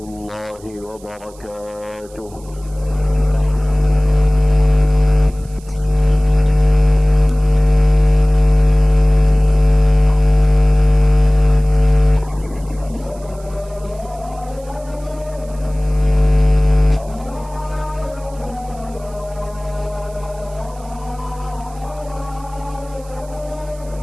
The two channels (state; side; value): noise; right; hiss, 25 dB below the sound